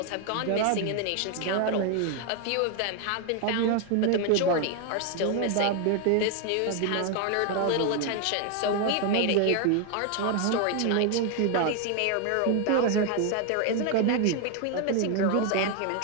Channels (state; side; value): different; both; correlation 0.01